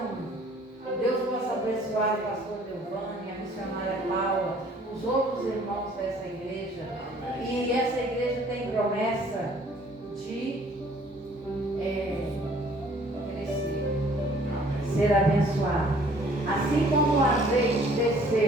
Deus possa abençoar o pastor Delvani, a missionária Paula, os outros irmãos dessa igreja. E essa igreja tem promessa de crescer, ser abençoada. Assim como o azeite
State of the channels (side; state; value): both; normal; correlation 0.57